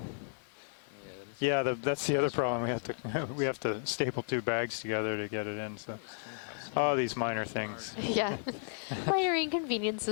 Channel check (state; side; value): silent; right; digital silence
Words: Yeah, that's the other problem. We have to staple 2 bags together to get it in. So, these minor things. Yeah, minor